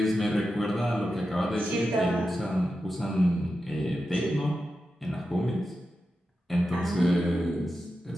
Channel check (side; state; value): both; normal; correlation 0.90